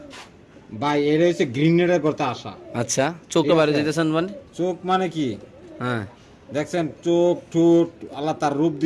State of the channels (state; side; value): identical; both; correlation 1.00